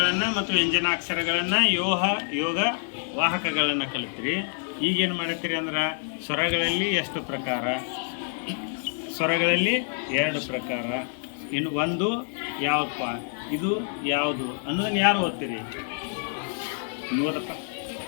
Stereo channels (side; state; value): right; silent; digital silence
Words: ಮತ್ತು ವ್ಯಂಜನಾಕ್ಷರಗಳನ್ನು ಯೋಗ ವಾಹಕಗಳನ್ನು ಕಲಿತ್ರಿ. ಈಗೇನು ಮಾಡ್ತೀರಿ ಅಂದ್ರೆ ಸ್ವರಗಳಲ್ಲಿ ಎಷ್ಟು ಪ್ರಕಾರ? ಸ್ವರಗಳಲ್ಲಿ 2 ಪ್ರಕಾರ. ಇನ್ನು ಒಂದು ಯಾವಪ್ಪ, ಇದು ಯಾವುದು ಅನ್ನೋದನ್ನು ಯಾರು ಓದ್ತೀರಿ? ಓದಪ್ಪ.